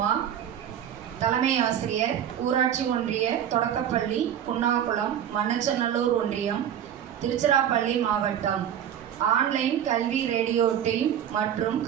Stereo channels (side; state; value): left; quieter; 9.8 dB